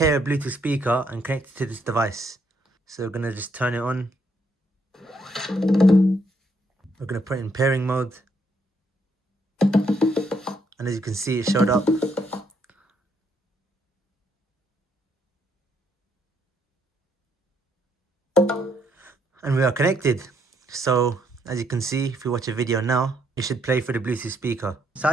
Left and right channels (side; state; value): both; normal; correlation 0.73